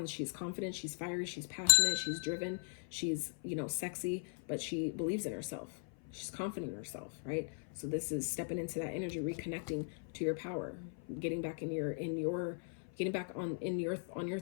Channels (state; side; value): silent; right; 52 dB below the other